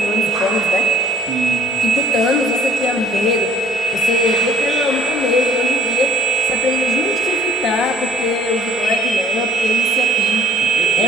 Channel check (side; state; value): both; normal; correlation 0.56